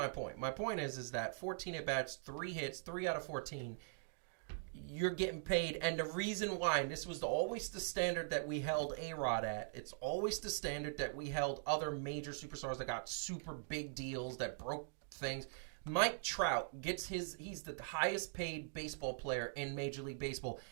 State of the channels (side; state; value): left; silent; digital silence